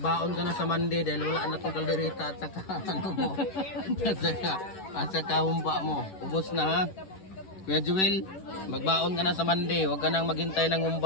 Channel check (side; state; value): right; late; 11 ms